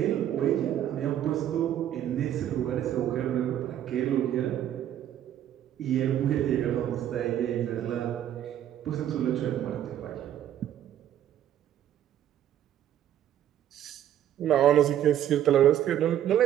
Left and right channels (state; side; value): quieter; left; 11.2 dB